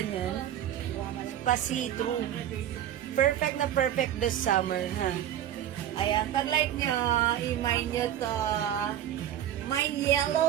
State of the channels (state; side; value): quieter; left; 11.2 dB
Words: niyan. Pa-see-through. Perfect na perfect this summer, ha? Ayan, pag like nyo, i-mine nyo to. Mine